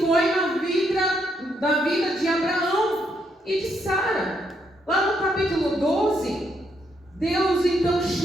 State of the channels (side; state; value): both; normal; correlation 0.76